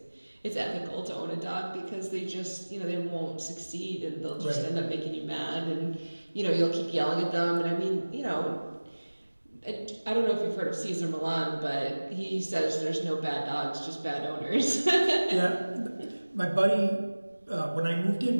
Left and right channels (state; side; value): inverted; both; correlation -1.00